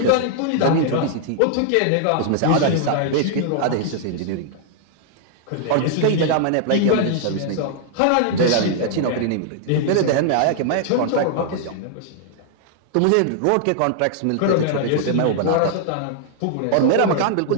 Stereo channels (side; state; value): both; different; correlation -0.01